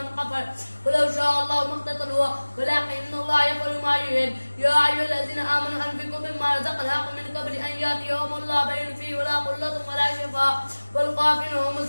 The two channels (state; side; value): inverted; both; correlation -1.00